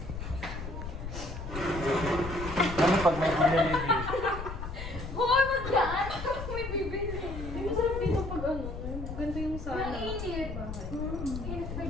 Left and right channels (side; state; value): left; noise; rumble, 7 dB below the sound